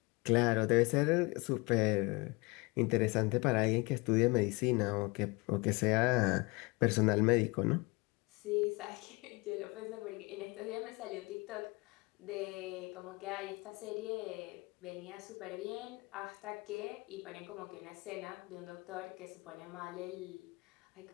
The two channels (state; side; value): quieter; right; 26.4 dB